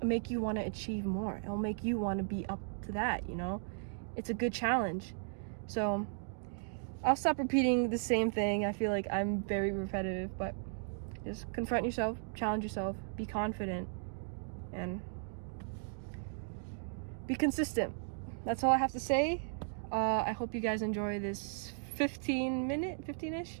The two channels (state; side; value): silent; left; digital silence